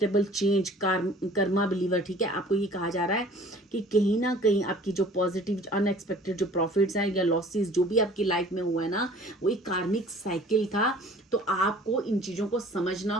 change, karma believer, ठीक है। आपको ये कहा जा रहा है कि कहीं ना कहीं आपकी जो पॉजिटिव अनएक्सपेक्टेड जो प्रॉफिट्स हैं या लॉसेस जो भी आपकी लाइफ में हुआ है ना, वो एक कार्मिक साइकिल था। तो आपको इन चीज़ों को समझना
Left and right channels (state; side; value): normal; both; correlation 0.50